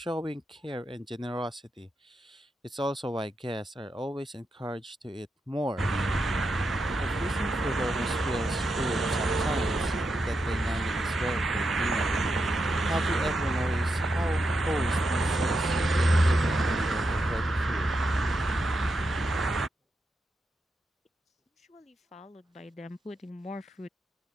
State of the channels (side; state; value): both; normal; correlation 0.85